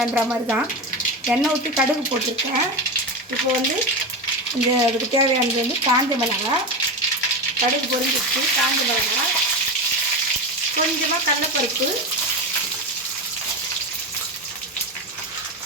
மாதிரி தான். எண்ணெய் ஊற்றி கடுகு போட்டிருக்கேன். இப்போ வந்து இந்த அதுக்கு தேவையானது வந்து காஞ்ச மிளகாய், கடுகு பொரிஞ்சிச்சு, காஞ்ச மிளகாய், கொஞ்சமாக கடலைப்பருப்பு,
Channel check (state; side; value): normal; both; correlation 0.19